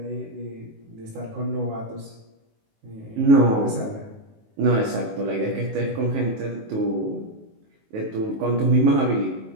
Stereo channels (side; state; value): left; late; 19 ms